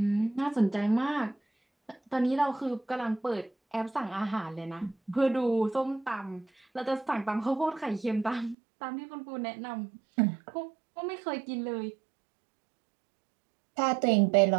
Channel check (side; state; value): left; drops out; at 8.6 s